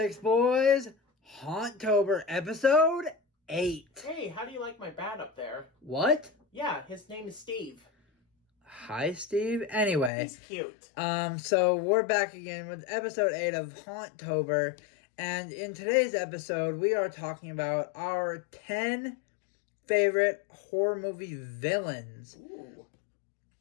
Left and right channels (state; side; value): drops out; right; at 10.1 s